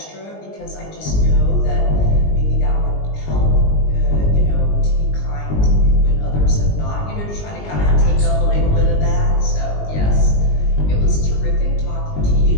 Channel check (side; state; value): right; late; 20 ms